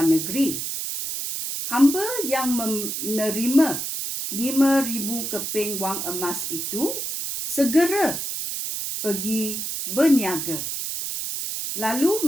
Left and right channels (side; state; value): right; noise; hiss, 4 dB below the sound